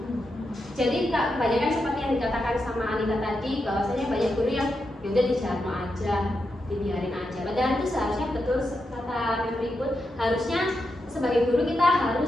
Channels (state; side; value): normal; both; correlation 0.86